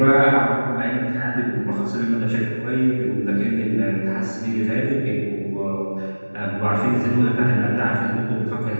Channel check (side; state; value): both; inverted; correlation -1.00